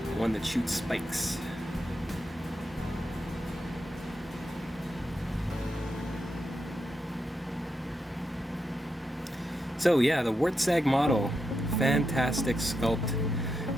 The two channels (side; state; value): both; normal; correlation 0.85